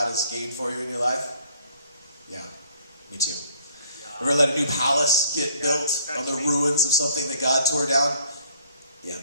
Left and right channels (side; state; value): both; inverted; correlation -0.59